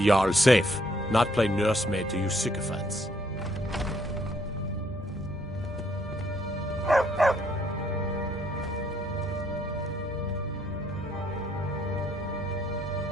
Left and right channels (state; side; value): normal; both; correlation 0.68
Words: Jarl safe, not play nursemaid to you sycophants.